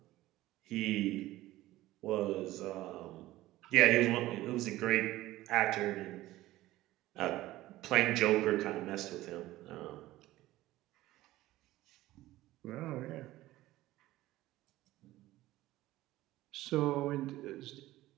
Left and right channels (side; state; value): left; quieter; 16.5 dB